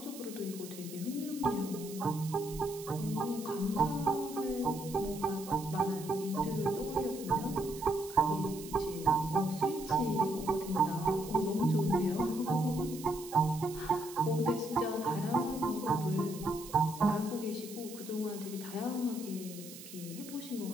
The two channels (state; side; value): noise; right; hiss, 14 dB below the sound